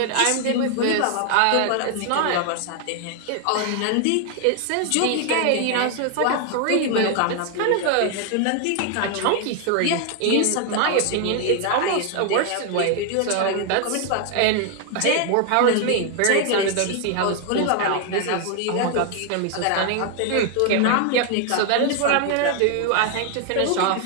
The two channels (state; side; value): different; both; correlation 0.00